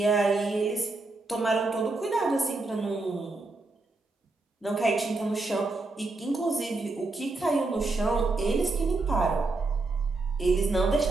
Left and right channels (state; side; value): quieter; left; 3.3 dB